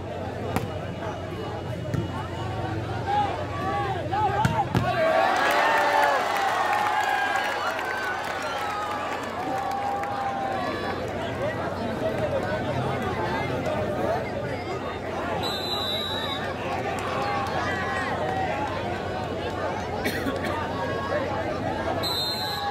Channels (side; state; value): right; noise; hum, 27 dB below the sound